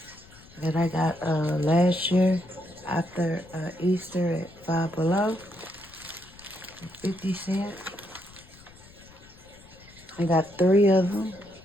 that I got last year after Easter at Five Below, 50 cents. I got 3 of them.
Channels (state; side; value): noise; left; rumble, 23 dB below the sound